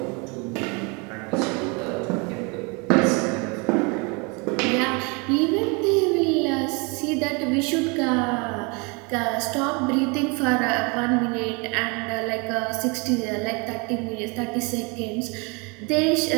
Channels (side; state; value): left; quieter; 30.6 dB